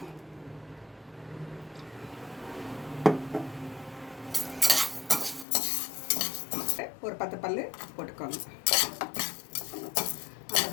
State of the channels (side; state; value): right; drops out; at 5.5 s